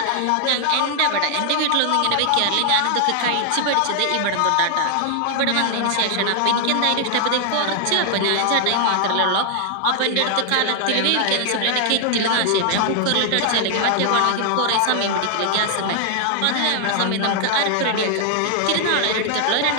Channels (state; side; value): different; both; correlation 0.00